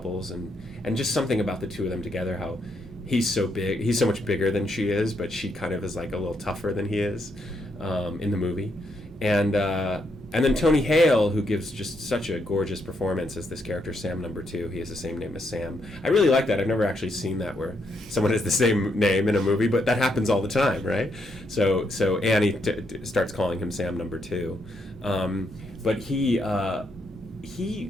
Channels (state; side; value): normal; both; correlation 0.77